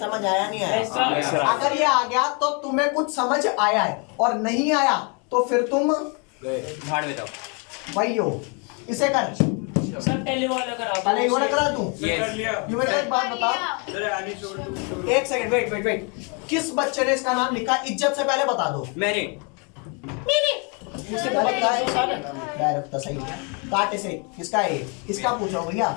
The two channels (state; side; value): quieter; right; 34.7 dB